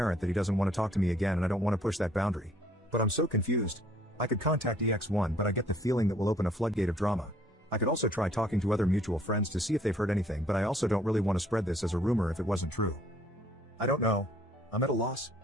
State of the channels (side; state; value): both; normal; correlation 0.61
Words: that he doesn't want to talk to me again, and I don't want to push that boundary. But I'm so confused. I could contact EX1, but I get the feeling that will open a floodgate of drama. I could also try talking to other mutual friends to see if they've heard anything, but I also don't really want to spread this as a rumor if it wasn't true. I don't know. I'm at a loss.